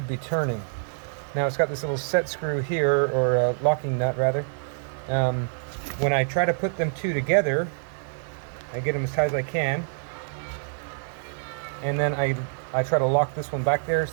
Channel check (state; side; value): silent; left; digital silence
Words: be turning. Now it's got this little set screw here, or a locking nut rather. When I try to put them two together, I get them as tight as I can. And then I try to lock this one back there